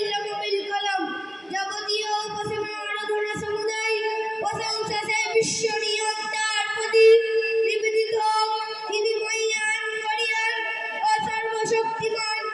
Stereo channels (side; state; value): both; identical; correlation 1.00